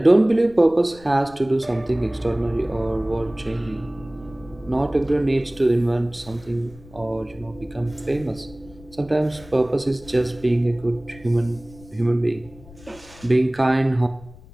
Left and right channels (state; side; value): noise; left; rumble, 21 dB below the sound